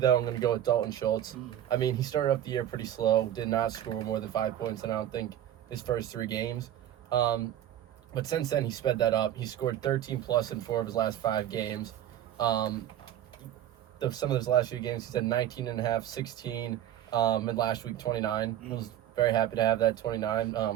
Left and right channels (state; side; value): quieter; left; 11.5 dB